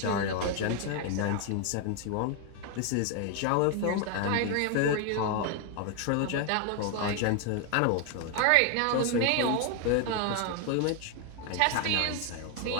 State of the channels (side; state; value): both; different; correlation 0.01